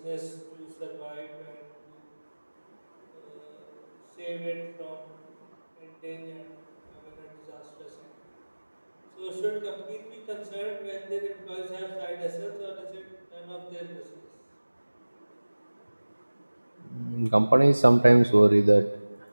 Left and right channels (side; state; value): both; inverted; correlation -1.00